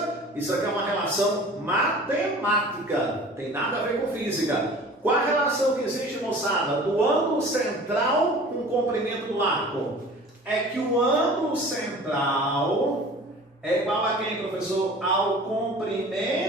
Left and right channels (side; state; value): both; normal; correlation 0.43